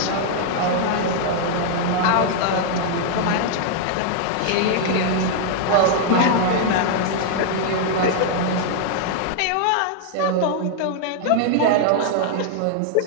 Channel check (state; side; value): different; both; correlation -0.01